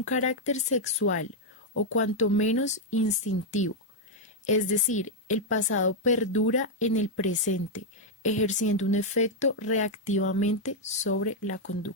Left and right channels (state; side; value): normal; both; correlation -0.02